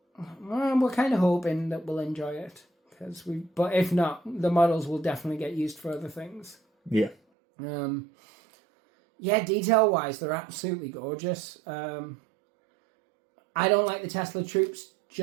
we're kind of hoping that we'll enjoy it. But if not, the models will definitely get used for other things. Yeah. Yeah, detail-wise, they're absolutely gorgeous. I don't like the Tesla troops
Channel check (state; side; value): drops out; left; at 7.2 s